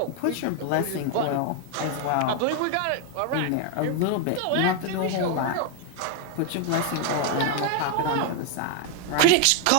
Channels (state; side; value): different; both; correlation 0.00